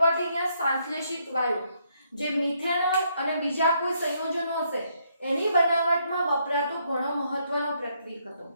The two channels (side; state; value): both; inverted; correlation -0.73